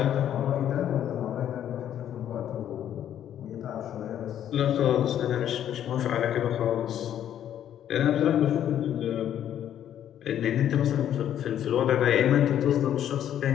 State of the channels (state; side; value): quieter; right; 10.5 dB